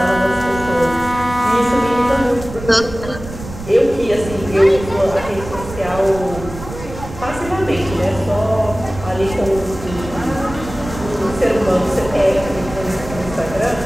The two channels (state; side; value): noise; right; rumble, 12 dB below the sound